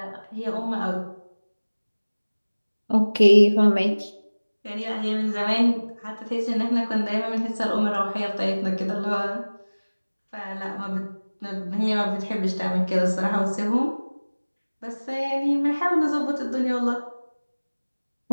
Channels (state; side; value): inverted; both; correlation -1.00